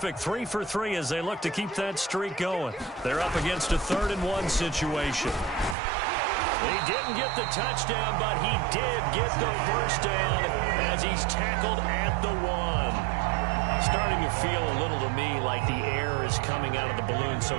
3 for 3 as they look to keep that streak going. They're up against a 3rd and 1 situation. He didn't get the touchdown, but he did get the first down as he's tackled at the 1. Starting to feel a little to me like the air is coming out of the balloon,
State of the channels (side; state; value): left; drops out; at 5.8 s